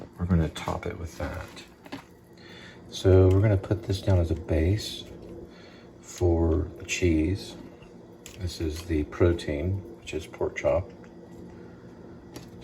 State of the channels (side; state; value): both; identical; correlation 1.00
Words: We're going to top it with that. So we're going to put this down as a base for the cheese. This is the protein, which is pork chop,